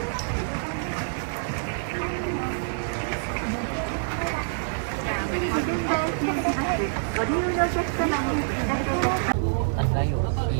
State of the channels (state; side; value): silent; left; digital silence